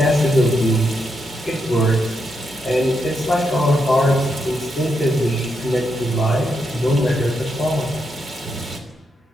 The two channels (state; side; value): normal; both; correlation 0.82